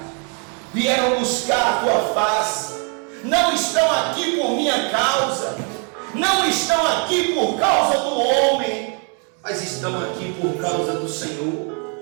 vieram buscar a tua face. Não estão aqui por minha causa, não estão aqui por causa do homem, mas estão aqui por causa do Senhor,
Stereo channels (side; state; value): left; quieter; 38.6 dB